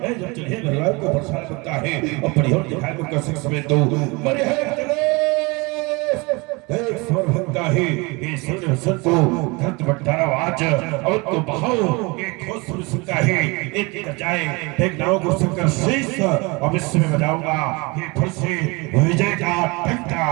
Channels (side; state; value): left; quieter; 26.5 dB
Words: जब चलिए भगवान को परेशान करता है और परिहोर दिखाई को कर सकते तो मरे है एक स्वर भक्ता है ये सुन हसन को धरत बट्टारा आज और तो बहाओ एक ठोस सुन सकता है एक जाए एक नाव को संकर शीश अब इसमें बजाऊंगा ये फिर से विजय का घंटा।